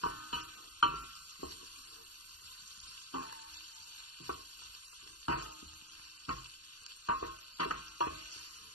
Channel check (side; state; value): right; late; 0.69 ms